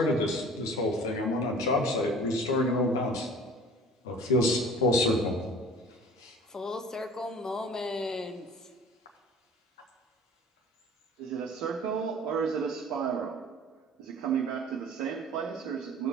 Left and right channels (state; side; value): normal; both; correlation 0.45